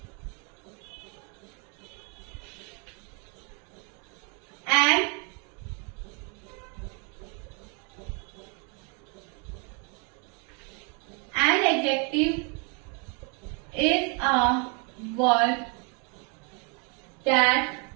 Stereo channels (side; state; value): left; quieter; 35.1 dB